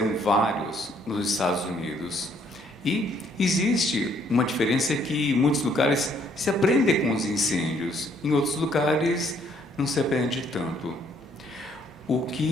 vários nos Estados Unidos. E existe uma diferença que em muitos lugares se aprende com os incêndios, em outros lugares não se aprende tanto. O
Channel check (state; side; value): normal; both; correlation 0.66